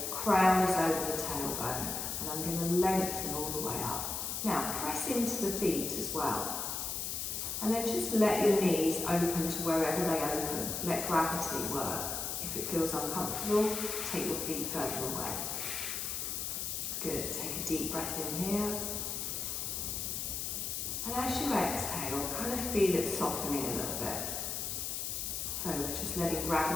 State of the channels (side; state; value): left; noise; hiss, 3 dB below the sound